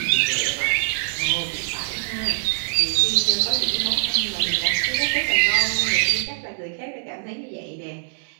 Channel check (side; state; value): left; silent; 63 dB below the other